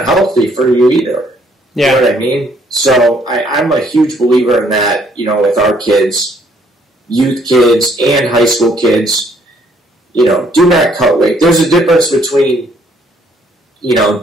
healthy for you either. Yeah. You know what I mean? So I'm a huge believer in that, with our kids, youth kids and high school kids, do not cut weight. There's a difference between,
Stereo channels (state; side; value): normal; both; correlation 0.66